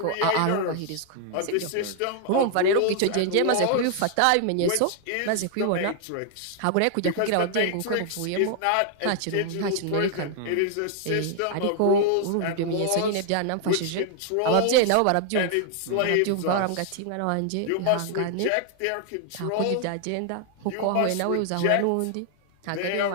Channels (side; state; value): both; different; correlation 0.00